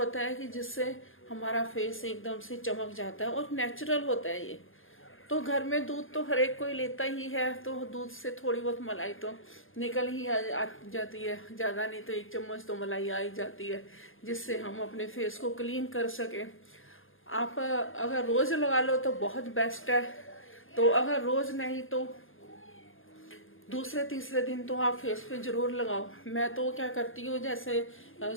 है कि जिससे हमारा फेस एकदम से चमक जाता है और नेचुरल होता है ये। तो घर में दूध तो हर एक कोई लेता ही है, तो दूध से थोड़ी बहुत मलाई तो निकल ही आ जाती है, ज्यादा नहीं तो 1 चम्मच तो मलाई आ ही जाती है, जिससे हम अपने फेस को क्लीन कर सके। आप अगर रोज लगा लो तो बहुत बेस्ट है, तो अगर रोज नहीं तो दूसरे तीसरे दिन तो आप फेस पे जरूर लगाओ। मैं तो क्या करती हूँ, जैसे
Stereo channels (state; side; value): late; right; 0.59 ms